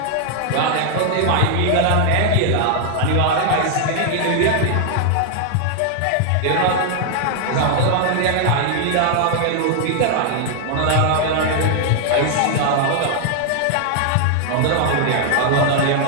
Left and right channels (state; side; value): different; both; correlation 0.00